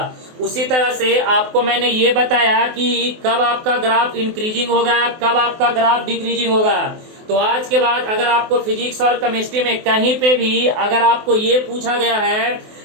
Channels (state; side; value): late; left; 24 ms